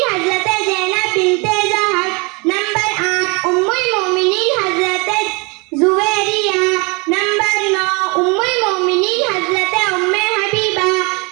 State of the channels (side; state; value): left; quieter; 29.4 dB